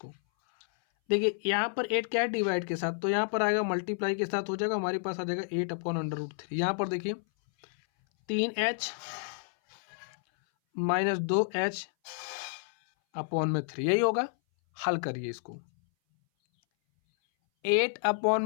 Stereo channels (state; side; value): silent; right; 58 dB below the other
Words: देखिए यहाँ पर 8 क्या है, डिवाइड के साथ, तो यहाँ पर आएगा मल्टीप्लाई के साथ हो जाएगा, हमारे पास आ जाएगा 8 अपॉन √3। यहाँ पर देखिए 3h माइनस 2h अपॉन में 3, यही होगा। हल करिए इसको। 8 अपॉन